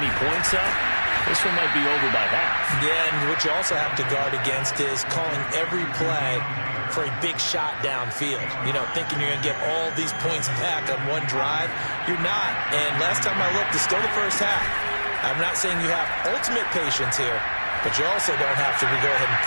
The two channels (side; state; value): both; inverted; correlation -1.00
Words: points up. This one might be over by half. Yeah, and what you also have to guard against is calling every play for a big shot downfield. You know, thinking you're going to get all these points back on one drive. You're not. And last time I looked, it's still the first half. I'm not saying you have ultimate patience here, but you also don't have to go ahead and